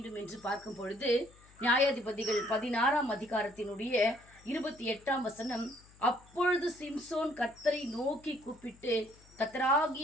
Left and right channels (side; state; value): left; noise; hum, 25 dB below the sound